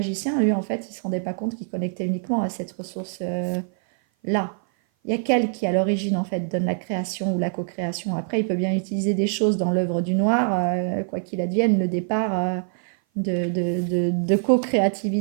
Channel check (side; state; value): left; silent; 56 dB below the other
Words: lui, en fait, il ne se rendait pas compte qu'il connectait uniquement à cette ressource-là. Il y a qu'elle qui, à l'origine, en fait, donne la création ou la co-création. Après, il peut bien utiliser des choses dans l'œuvre du noir, quoi qu'il advienne, le départ de